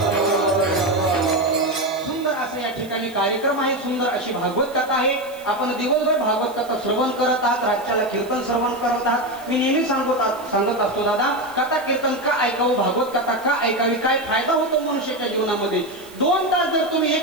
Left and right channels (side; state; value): right; noise; hiss, 22 dB below the sound